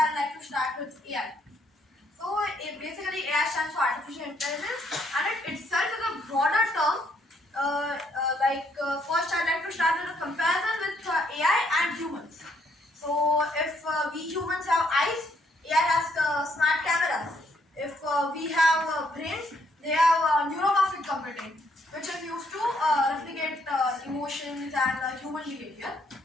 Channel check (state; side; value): normal; both; correlation 0.70